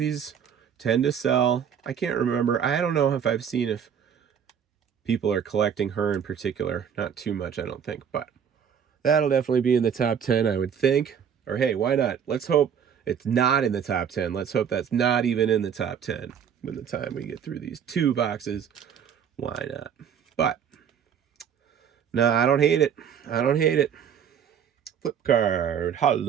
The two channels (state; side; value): quieter; left; 8.0 dB